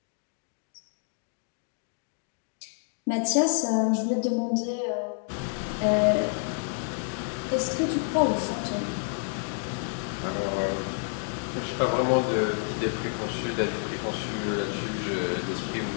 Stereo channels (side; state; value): right; silent; 59 dB below the other